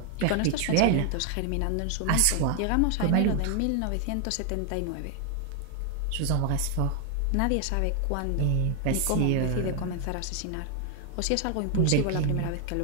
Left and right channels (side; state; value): both; different; correlation 0.01